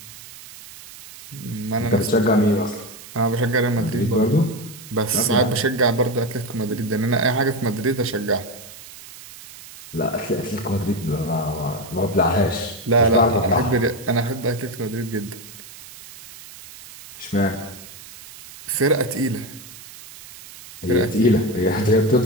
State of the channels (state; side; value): noise; right; hiss, 17 dB below the sound